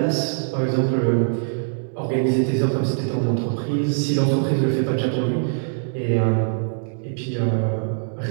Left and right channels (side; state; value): left; silent; digital silence